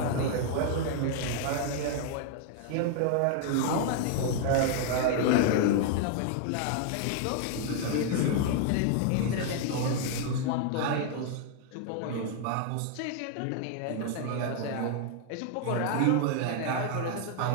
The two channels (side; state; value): both; different; correlation 0.00